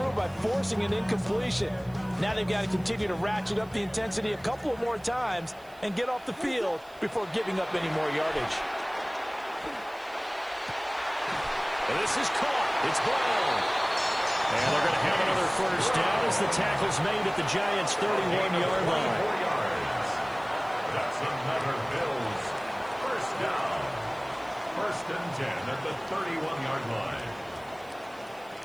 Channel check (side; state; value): right; noise; hiss, 27 dB below the sound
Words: by forcing an incompletion. Now they've got to continue to ratchet up the intensity a couple of more times and get off the field before giving up any more yardage. And this is caught. It's Brown. And they're going to have another 1st down as the tackle's made at the Giants' 31-yard line. That's another Bills 1st down. 1st and 10 at the 31-yard line.